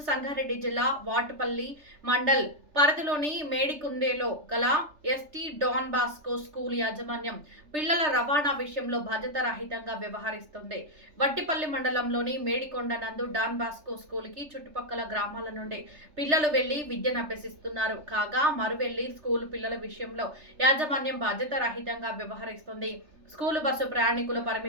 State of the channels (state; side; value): late; left; 3.3 ms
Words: సంగారెడ్డి జిల్లా వాటుపల్లి మండల్ పరిధిలోని మేడికుందేలో గల ఎస్టీ డాన్ బాస్కో స్కూల్ యాజమాన్యం పిల్లల రవాణా విషయంలో బాధ్యతారహితంగా వ్యవహరిస్తుంది. వట్టిపల్లి మండలంలోని మేడికొండ నందు డాన్ బాస్కో స్కూల్ కి చుట్టుపక్కల గ్రామాల నుండి పిల్లలు వెళ్లి విద్యను అభ్యసిస్తున్నారు. కాగా మరువెళ్లి స్కూల్ పిల్లల విషయంలో యాజమాన్యం బాధ్యతారహితంగా వ్యవహరిస్తుంది. స్కూలు బస్సు ప్రయాణికుల